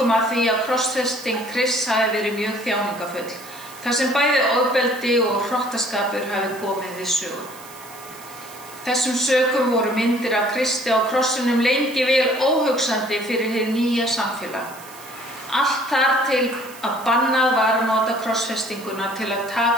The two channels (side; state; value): right; noise; hiss, 19 dB below the sound